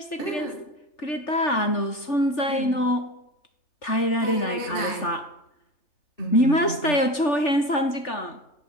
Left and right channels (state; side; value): late; right; 3.4 ms